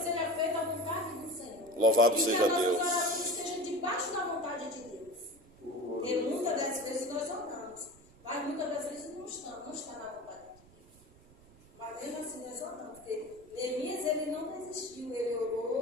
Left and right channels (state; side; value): noise; right; rumble, 25 dB below the sound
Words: seja feita a vontade do Senhor. Louvado e seja que a Deus. nossa oração esteja debaixo da vontade de Deus. Porque muitas das vezes nós oramos, mas muitas das vezes não está na vontade de Deus. Mas mesmo assim nós oramos, porque Neemias ele não desistiu, ele